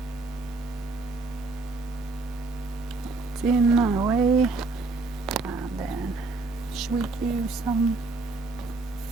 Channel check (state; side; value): quieter; left; 3.5 dB